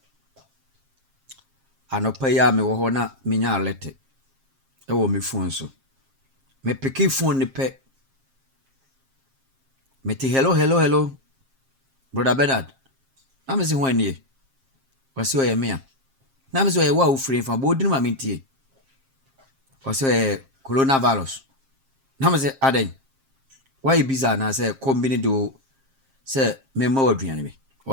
Anopa ya me wo ho na menya alete. Ewo me phone so. Me peki phone ni pe. Me ti hello. Brother Bernard. Na me si ho anie. Wasi o ye me a. Na me si o ye wa wo free fa bo dinu ma mentie. Wasi o ye coronavirus. Na me si aden. Why biza na say combine do say me ma waduane me.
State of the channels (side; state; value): left; late; 7.5 ms